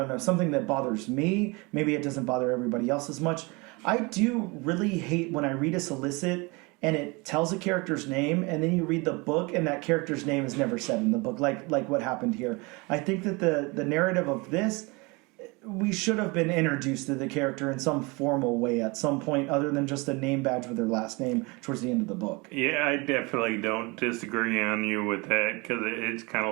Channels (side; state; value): left; quieter; 26.7 dB